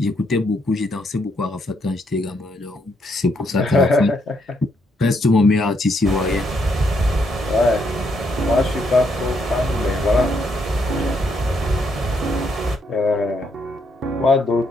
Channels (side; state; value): both; normal; correlation 0.75